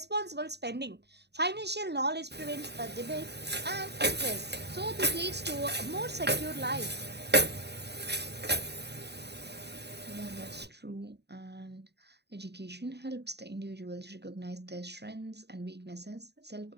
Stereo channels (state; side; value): late; left; 0.49 ms